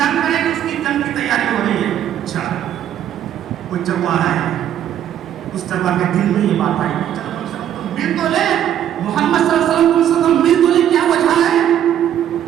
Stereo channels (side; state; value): left; quieter; 10.6 dB